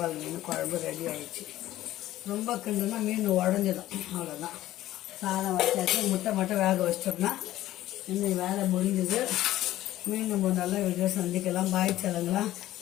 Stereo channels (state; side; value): quieter; right; 14.6 dB